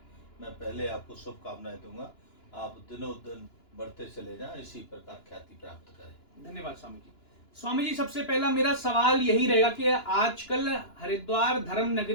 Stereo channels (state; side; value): late; right; 2.9 ms